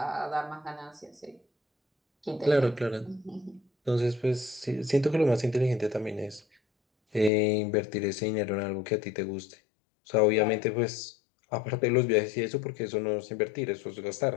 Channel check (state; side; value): drops out; right; at 7.3 s